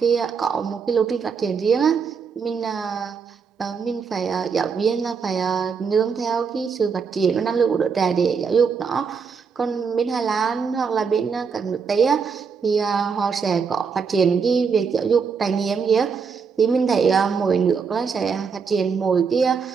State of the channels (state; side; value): quieter; left; 5.8 dB